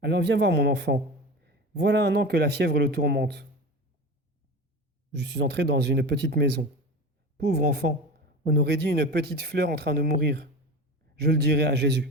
Alors viens voir mon enfant. Voilà un an que la fièvre le tourmente. Je suis entré dans une petite maison. Pauvre enfant, on aurait dit une petite fleur en train de mourir. Je le dirai à Jésus.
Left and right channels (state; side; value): normal; both; correlation 0.29